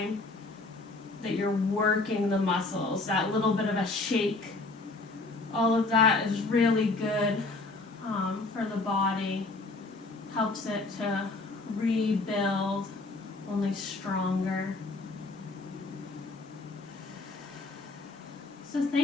that you're working the muscles, that little bit of a shake, all of that is really good for the body. Helps it to rebuild only stronger. So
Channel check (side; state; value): right; quieter; 3.4 dB